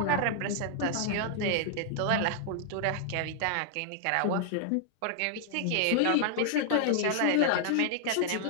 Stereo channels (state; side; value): different; both; correlation 0.00